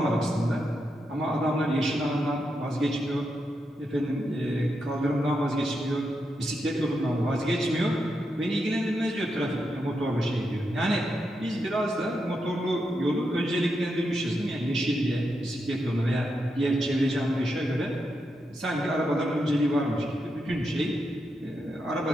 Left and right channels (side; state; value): both; normal; correlation 0.84